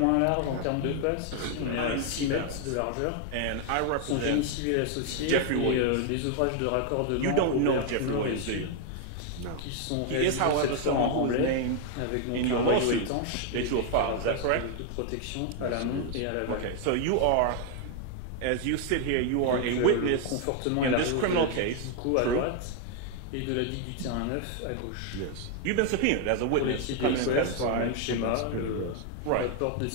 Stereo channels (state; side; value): different; both; correlation 0.00